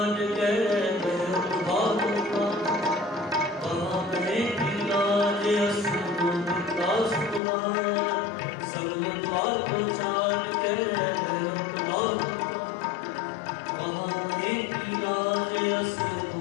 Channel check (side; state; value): right; drops out; at 7.4 s